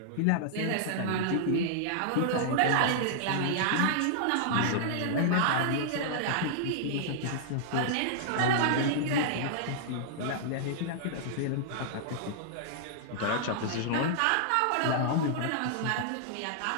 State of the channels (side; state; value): both; different; correlation -0.01